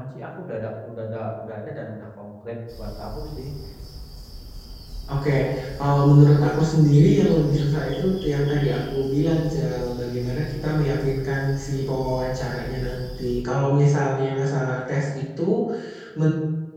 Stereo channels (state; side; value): identical; both; correlation 1.00